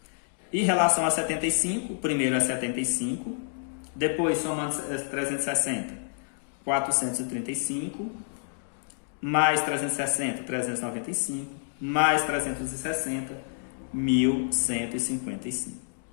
Em relação a 75, o primeiro é 75, depois somando 360, 435, mais 360, 395, mais 360, 1155.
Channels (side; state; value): right; silent; digital silence